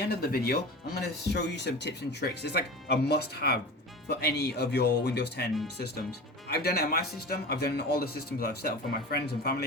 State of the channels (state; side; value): normal; both; correlation 0.32